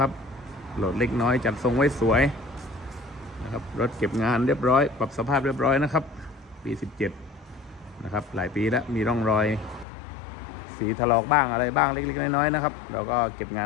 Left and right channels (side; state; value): right; drops out; at 9.9 s